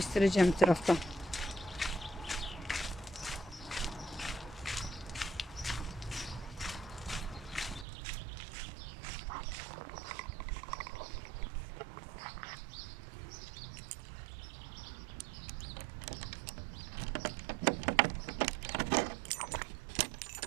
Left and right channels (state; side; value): drops out; left; at 7.9 s